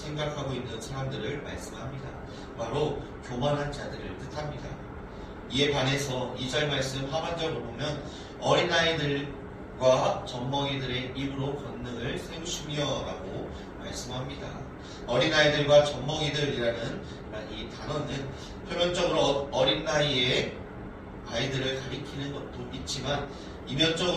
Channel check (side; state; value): both; identical; correlation 1.00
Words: 있는 사람들을 말씀합니다. 바로 교만한 자들을 뜻합니다. 이에 반해서 2절 말씀 하반절을 보면 어린아이들과 젖먹이들의 입으로 권능을 세우시며 라고 말씀합니다. 어린아이들과 젖먹이들이라는 이 단어는 표면적으로 어린 나이에 아이들을 가리키는 것도 있지만